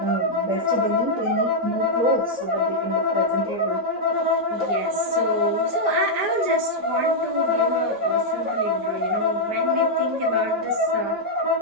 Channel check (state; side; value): late; left; 4.9 ms